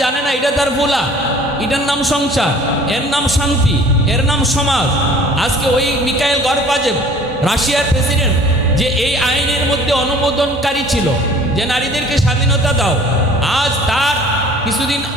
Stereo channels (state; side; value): normal; both; correlation 0.50